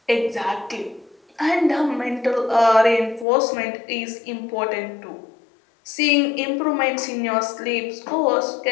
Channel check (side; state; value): right; drops out; at 3.2 s